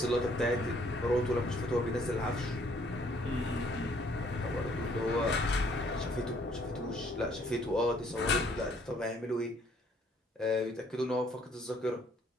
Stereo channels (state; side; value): normal; both; correlation 0.63